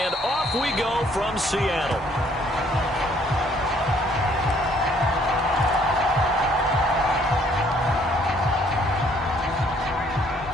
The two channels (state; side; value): normal; both; correlation 0.63